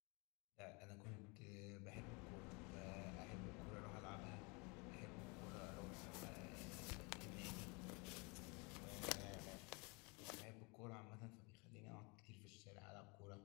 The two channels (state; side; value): quieter; right; 29.7 dB